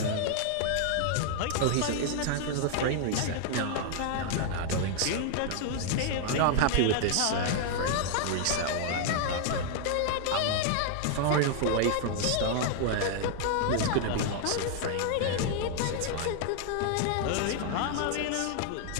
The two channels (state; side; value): different; both; correlation 0.00